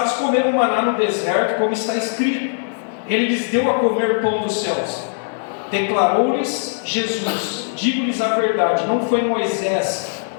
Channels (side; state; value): right; silent; digital silence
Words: comeram maná no deserto, como está escrito: ele lhes deu a comer pão dos céus. Declarou-lhes Jesus: digo-lhes a verdade, não foi Moisés